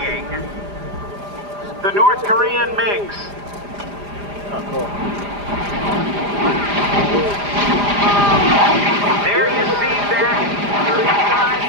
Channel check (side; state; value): left; late; 4.9 ms